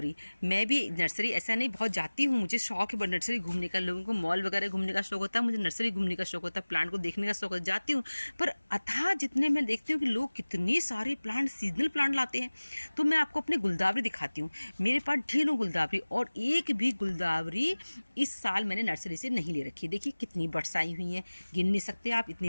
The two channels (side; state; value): both; inverted; correlation -1.00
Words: मैं भी नर्सरी ऐसा नहीं बहुत जाती हूँ, मुझे शौक है नर्सरी घूमने का। लोगों को मॉल वगैरह घूमने का शौक होता है, मुझे नर्सरी घूमने का शौक होता है, प्लांट को देखने का शौक होता है, जाती हूँ। पर अथाह जितने मैं देखती हूँ कि लोग कितने सारे प्लांट, सीजनल प्लांट लाते हैं, तो मैं आपको अपने गुलदावरी दिखाती हूँ। मेरे पास ढेरों गुलदावरी, और एक भी गुलदावरी इस साल मैंने नर्सरी से नहीं ले रखी। देखिए कितनी बड्स आई हुई हैं, गिन नहीं सकते आप,